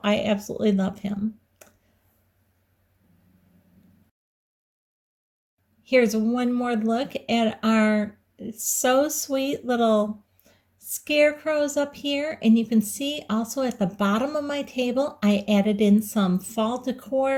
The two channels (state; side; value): identical; both; correlation 1.00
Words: I absolutely love him. Here's one more look at our so sweet little scarecrows up here, and you can see also at the bottom of my table I added in some fall